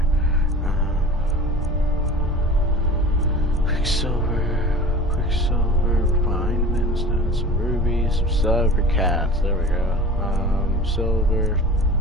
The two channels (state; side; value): normal; both; correlation 0.38